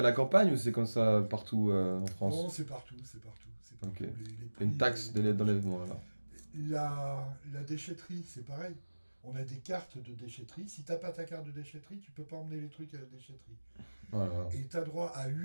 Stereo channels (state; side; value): inverted; both; correlation -1.00